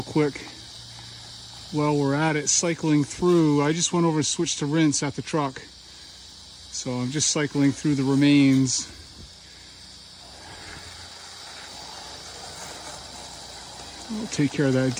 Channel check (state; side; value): identical; both; correlation 1.00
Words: quick while we're at it, cycling through. I just went over and switched to rinse at the truck. So I'm just cycling through the remains. I'll take care of that